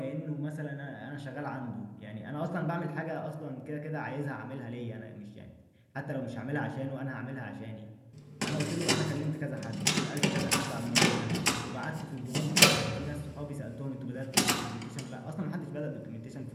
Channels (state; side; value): identical; both; correlation 1.00